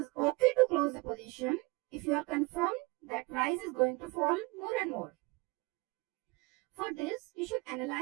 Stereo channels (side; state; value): left; quieter; 26.1 dB